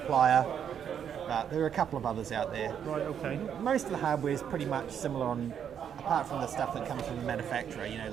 But there are a couple of others out there. Right, okay. Most of the hardware is pretty much similar apart from the stuff that comes from the manufacturer,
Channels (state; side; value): quieter; left; 8.4 dB